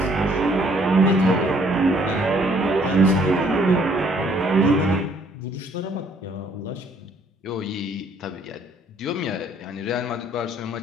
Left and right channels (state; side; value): normal; both; correlation 0.63